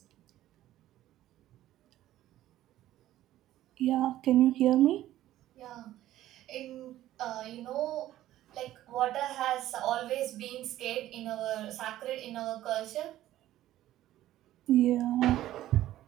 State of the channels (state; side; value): quieter; left; 13.9 dB